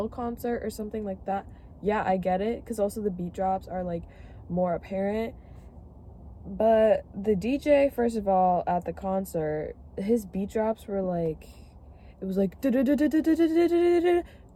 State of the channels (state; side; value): identical; both; correlation 1.00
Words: concert or something like that, yeah, I get it, because also the beat drops are like more apparent. But the DJ, first of all, at the concert, his beat drops were like, it was like